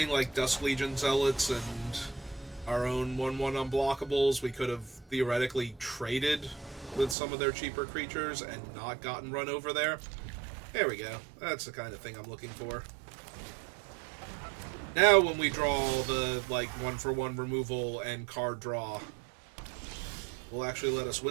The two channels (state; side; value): drops out; left; at 7.2 s